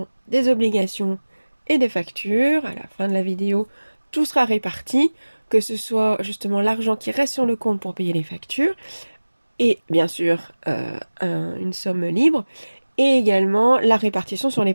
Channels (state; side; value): inverted; both; correlation -1.00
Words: des obligations et des factures. À la fin de la vidéo, tout sera réparti, que ce soit justement l'argent qui reste sur le compte pour payer les factures et bien sûr une somme libre et également la répartition sur les